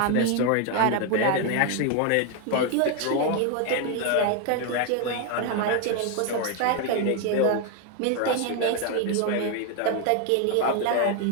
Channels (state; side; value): different; both; correlation 0.01